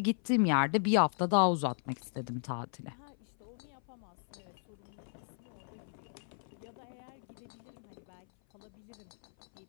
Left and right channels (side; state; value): right; silent; 54 dB below the other